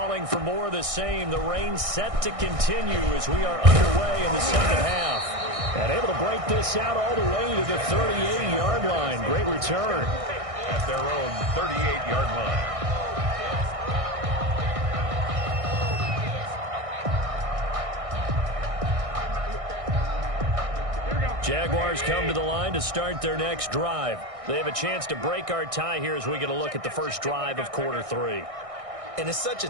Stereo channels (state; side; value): late; left; 1.6 ms